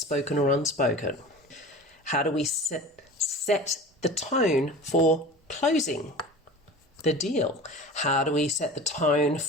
or unspoken? How do we set the tone for closing the deal? How do we set the tone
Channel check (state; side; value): normal; both; correlation 0.36